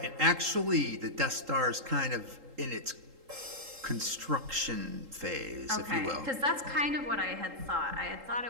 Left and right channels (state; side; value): late; left; 3.8 ms